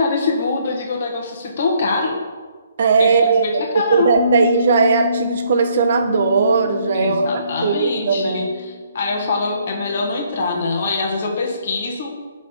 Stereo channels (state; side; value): inverted; both; correlation -0.67